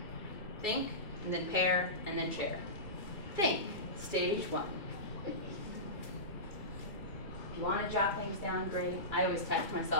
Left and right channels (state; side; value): late; right; 2.5 ms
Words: Think, and then pair, and then share. Think, stage 1. If you want to jot things down, great. I always text